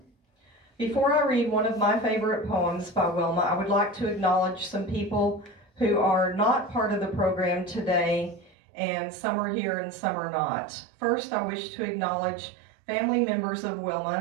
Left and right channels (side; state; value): left; drops out; at 8.5 s